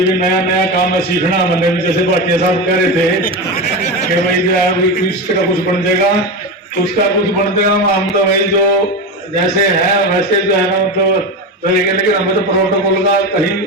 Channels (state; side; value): normal; both; correlation 0.19